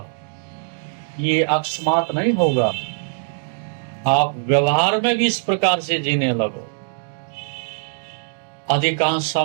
ये अकस्मात नहीं होगा। आप व्यवहार में भी इस प्रकार से जीने लगो, अधिकांश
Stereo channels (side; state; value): left; silent; digital silence